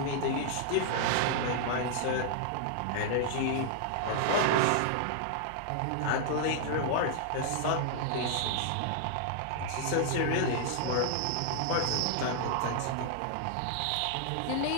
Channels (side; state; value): both; different; correlation -0.01